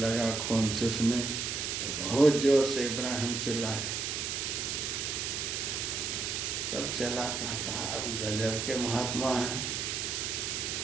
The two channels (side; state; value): right; noise; hiss, 2 dB below the sound